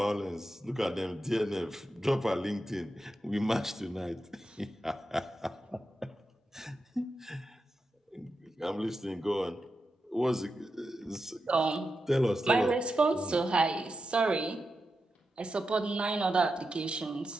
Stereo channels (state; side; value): normal; both; correlation 0.89